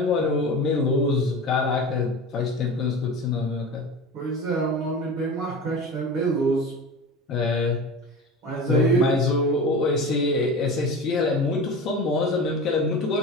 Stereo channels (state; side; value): normal; both; correlation 0.31